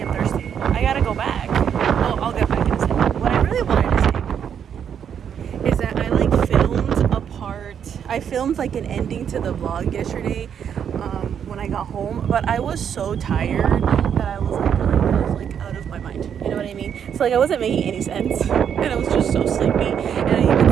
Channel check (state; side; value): quieter; left; 8.3 dB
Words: am thirsty. I gotta go back. Well, I'll get back in a second. What I really wanted to say is that I like filmed a part. I filmed like an ending to the vlog yesterday when I got home, but I was so tired that I was like out of my mind. You know what I mean? So like I wasn't making any sense, and I was just so sleepy. And I even